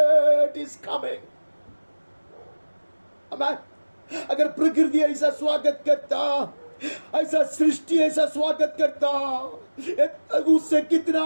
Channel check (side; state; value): both; inverted; correlation -1.00